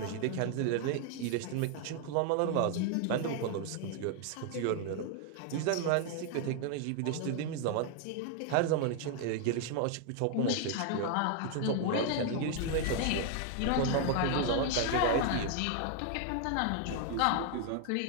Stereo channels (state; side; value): different; both; correlation 0.00